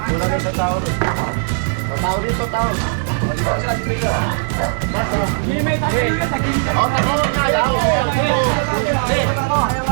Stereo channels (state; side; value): silent; left; digital silence